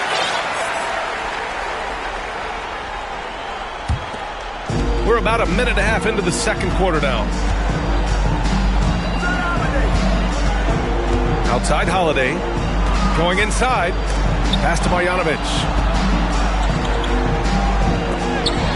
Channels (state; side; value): identical; both; correlation 1.00